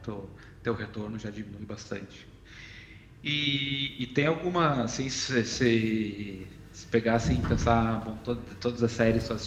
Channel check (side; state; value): both; identical; correlation 1.00